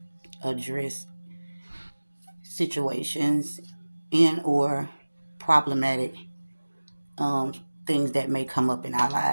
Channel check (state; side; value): inverted; both; correlation -1.00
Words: address situations and or problematic um things that may come up in our